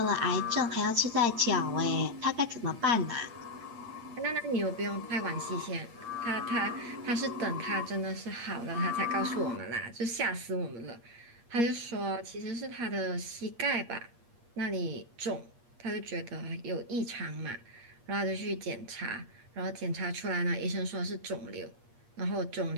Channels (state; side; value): late; left; 8.5 ms